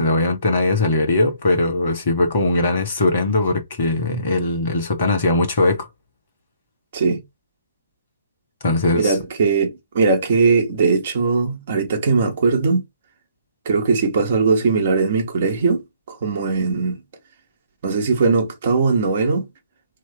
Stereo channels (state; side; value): inverted; both; correlation -0.65